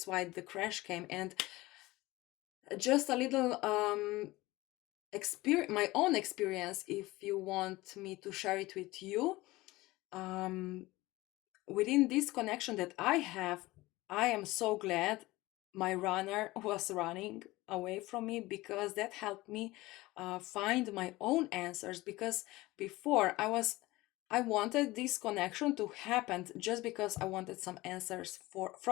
why the crash came. And just a little my own experience, if you want me to share it with you. Within this connection that I have, I am so glad my runner was running away from me, because that helped me find my own answers. Because before I wanted this connection to happen just because I wanted some answers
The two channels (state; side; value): quieter; right; 19.6 dB